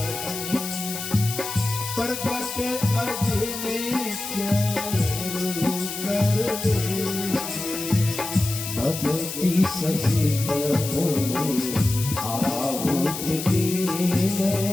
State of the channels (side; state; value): left; noise; hiss, 7 dB below the sound